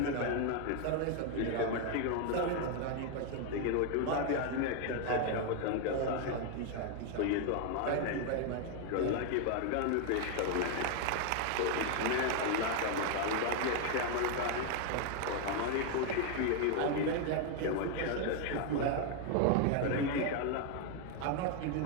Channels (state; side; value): different; both; correlation 0.01